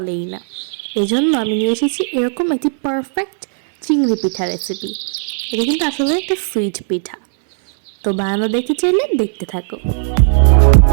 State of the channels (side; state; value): left; silent; digital silence